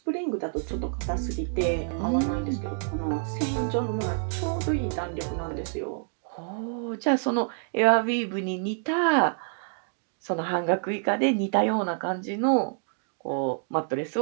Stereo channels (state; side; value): silent; left; digital silence